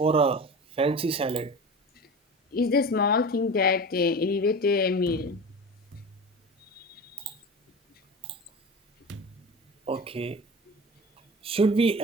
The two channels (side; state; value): both; normal; correlation 0.32